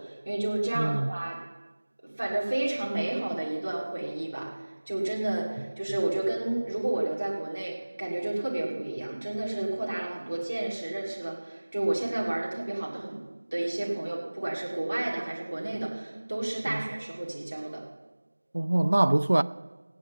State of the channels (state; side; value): inverted; both; correlation -1.00